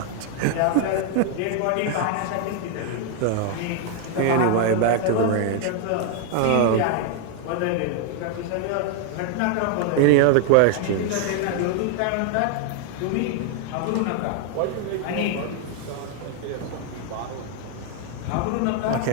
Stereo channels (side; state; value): both; different; correlation 0.00